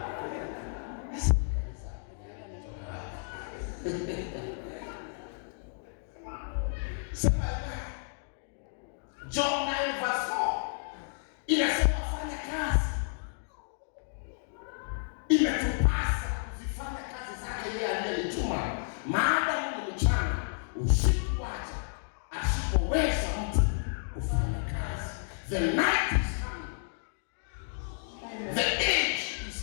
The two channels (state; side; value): silent; right; digital silence